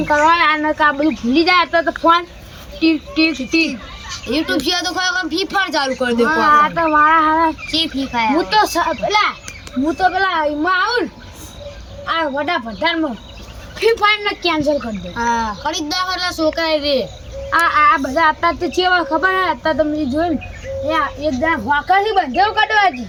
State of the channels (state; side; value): identical; both; correlation 1.00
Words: કરવા અને કા બધું ભૂલી જાય તો ફોન ટીક યુટ્યુબ છે તો ખરેખર ફ્રી ફાયર ચાલુ કરી દે આ તો મારા હારા ચી ફ્રી ફાયર હું તો પેલા એમાં આવું આ વડા ભંડારમાં ફ્રી ફાયર ને કેન્સલ કરી દે હા ખરીદદાર એટલે છોકરા રે આ બધા અત્યારે તો ચેવા ખબર હે અત્યારે તમે જોયું ને એક જણા વાંકાથી બંધેવ કાઢવા હતી